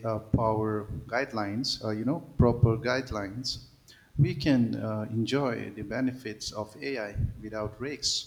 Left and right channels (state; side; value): identical; both; correlation 1.00